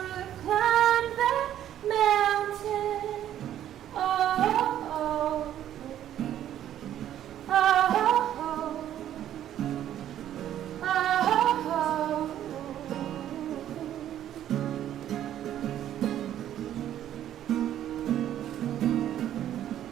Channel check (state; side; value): quieter; left; 11.3 dB